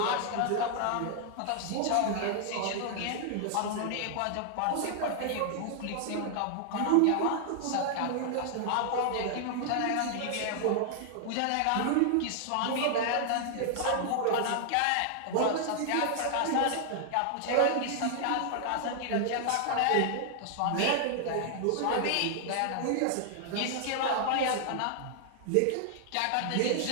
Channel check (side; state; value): both; different; correlation 0.00